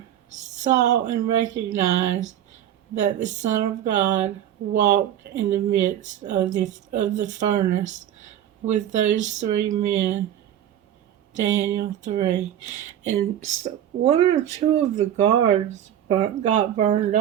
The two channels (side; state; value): left; quieter; 10.9 dB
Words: saw and recognized that the Son of God walked in the midst of the furnace with those three men, Daniel 3. And one or two of the guards got burned